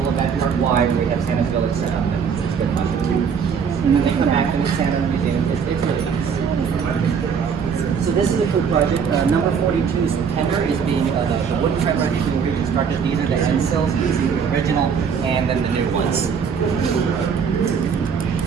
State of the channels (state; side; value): quieter; left; 6.6 dB